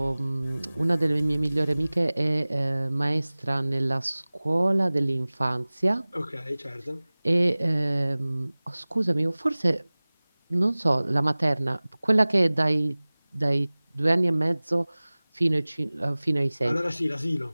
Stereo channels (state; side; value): inverted; both; correlation -1.00